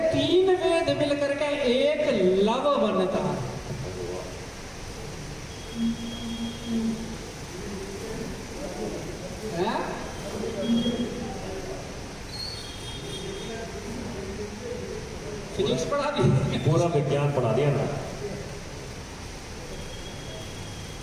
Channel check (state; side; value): identical; both; correlation 1.00